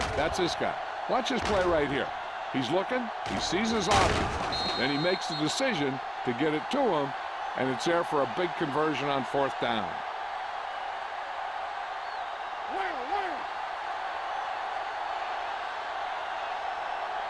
That's this guy. Watch this play right here. He's looking, he sees his option, then he makes the decision to get it to him, and it's there for a big conversion on 4th down.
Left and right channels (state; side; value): identical; both; correlation 1.00